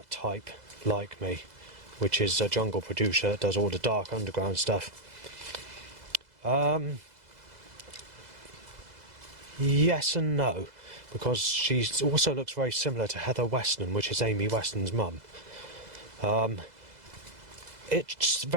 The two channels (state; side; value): late; left; 2.0 ms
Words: type like me, which is a jungle producer that does all the dark underground stuff. Yes and no, because she also looks very similar to Heather Weston, which is Amy Weston's mum. It's